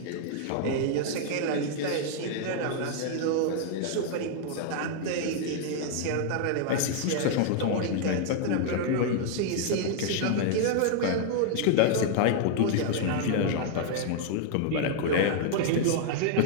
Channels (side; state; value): both; different; correlation 0.00